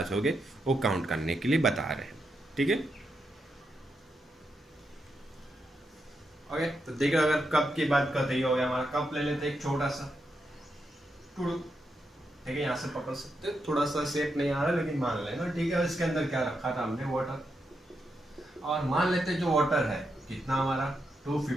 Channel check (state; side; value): normal; both; correlation 0.84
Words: होंगे, वो काउंट करने के लिए बता रहे हैं। ठीक है, ओके, तो देखो अगर कप की बात करते ही हो गया हमारा। कप ले लेते हैं एक छोटा सा टुडू, ठीक है, यहाँ से पकड़ सकते हो, थोड़ा सा शेप नहीं आ रहा लेकिन मान लेना, ठीक है। इसके अंदर क्या रखा था हमने, वाटर, और मान लेते हैं जो वाटर है कितना हमारा